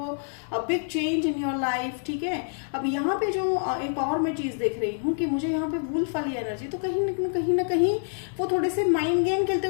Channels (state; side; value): silent; right; 60 dB below the other